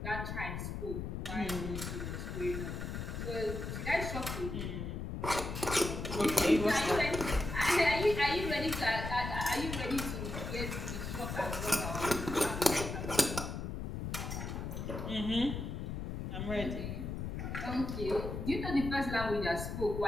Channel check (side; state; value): left; noise; rumble, 5 dB below the sound